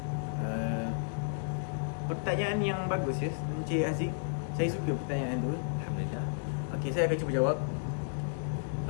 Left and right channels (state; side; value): silent; right; digital silence